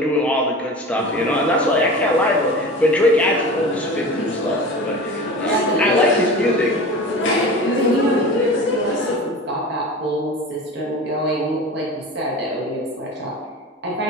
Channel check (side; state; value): both; normal; correlation 0.34